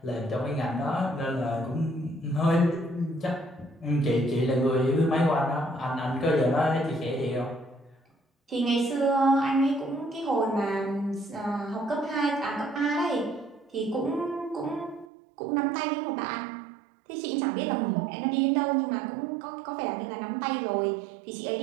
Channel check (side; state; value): left; drops out; at 15.1 s